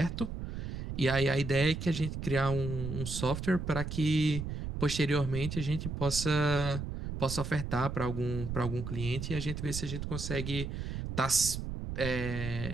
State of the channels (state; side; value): noise; right; rumble, 5 dB below the sound